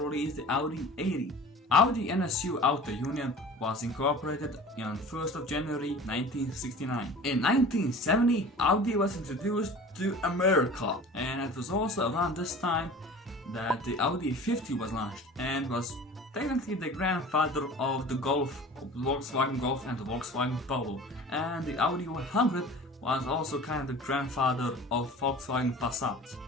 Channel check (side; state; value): both; normal; correlation 0.41